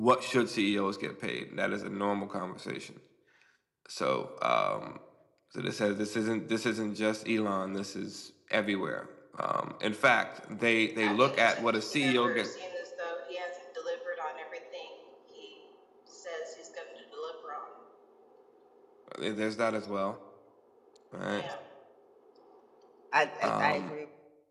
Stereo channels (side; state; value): both; identical; correlation 1.00